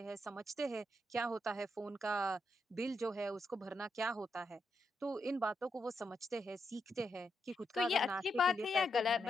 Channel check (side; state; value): both; normal; correlation 0.82